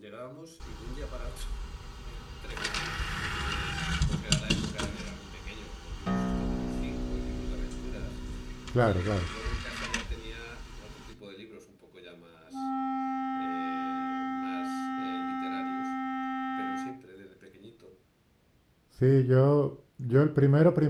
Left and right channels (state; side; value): identical; both; correlation 1.00